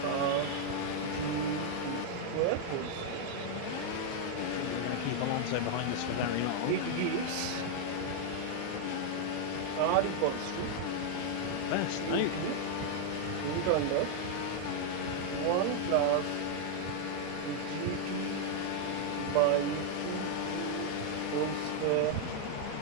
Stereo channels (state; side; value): different; both; correlation 0.00